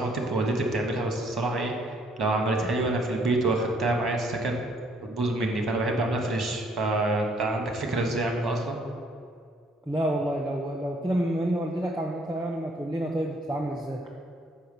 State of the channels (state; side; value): normal; both; correlation 0.65